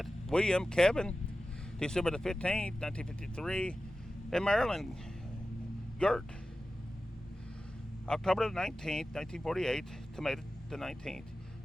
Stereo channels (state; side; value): normal; both; correlation 0.94